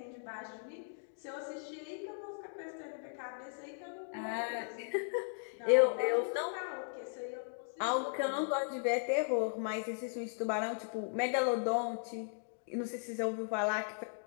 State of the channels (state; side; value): silent; right; digital silence